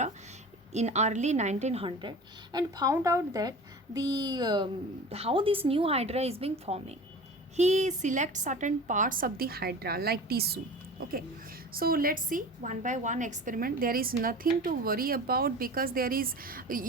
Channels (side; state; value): both; normal; correlation 0.37